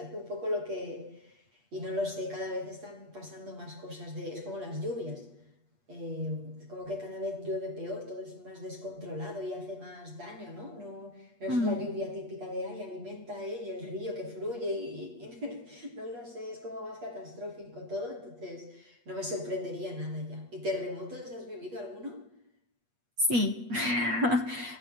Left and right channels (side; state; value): left; late; 8.4 ms